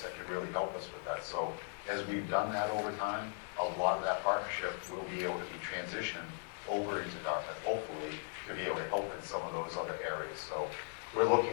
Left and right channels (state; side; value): silent; right; 52 dB below the other